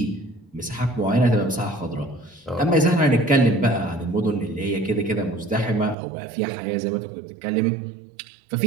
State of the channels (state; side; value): drops out; left; at 6.0 s